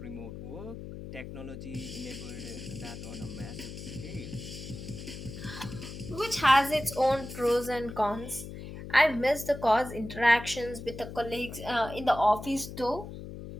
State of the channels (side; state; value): left; noise; hum, 10 dB below the sound